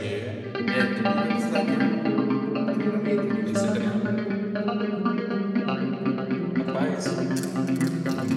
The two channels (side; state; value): both; identical; correlation 1.00